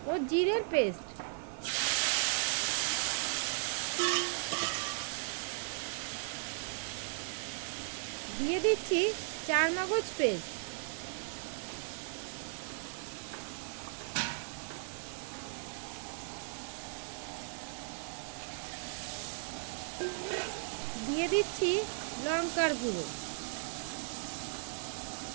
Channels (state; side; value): silent; left; 53 dB below the other